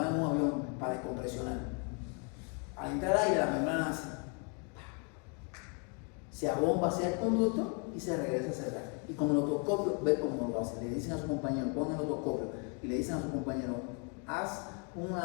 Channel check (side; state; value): right; quieter; 37.3 dB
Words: en un avión para descompresionar. Al entrar aire, la membrana hace, se abomba hacia el conducto y se regresa a cerrar. Y con el otoscopio, ve cómo lo hace. Le dicen a su compañero, pon el otoscopio, y le dicen a su compañero, haz